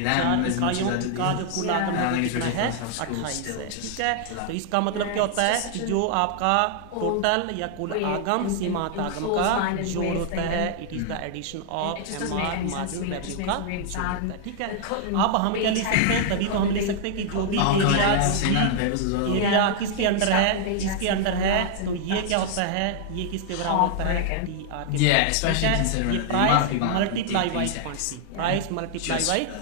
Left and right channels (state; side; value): different; both; correlation -0.01